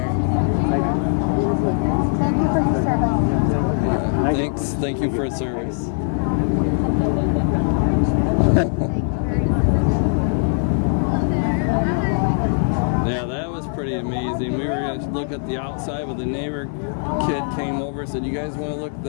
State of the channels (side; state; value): right; silent; 65 dB below the other